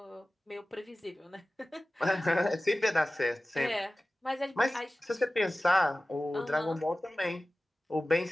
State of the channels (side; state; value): both; normal; correlation 0.96